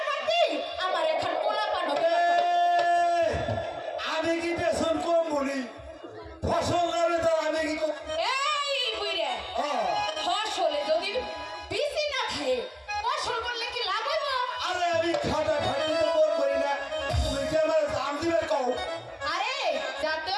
পারতি আমার এখন পোলা পানো আমি কি পেছন কম বলি ফসল নামে তো আমি কি এই বুইরে ফসলে যদি বিসি না খায় ফসল করলে কি লাভ হইব আরে আমি খাটা খাটি তো কম করি না তুমি কি আমার দাম দিবে কও আরে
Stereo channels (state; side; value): identical; both; correlation 1.00